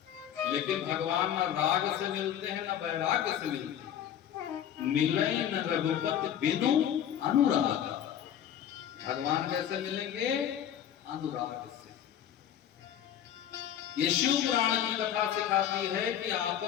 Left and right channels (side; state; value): right; quieter; 10.1 dB